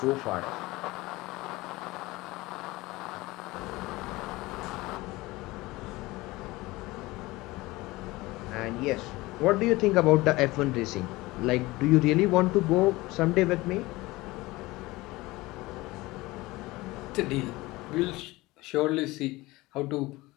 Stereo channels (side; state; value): right; quieter; 20.4 dB